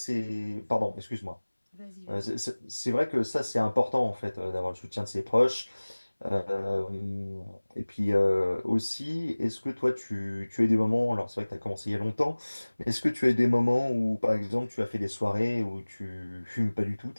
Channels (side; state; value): both; inverted; correlation -1.00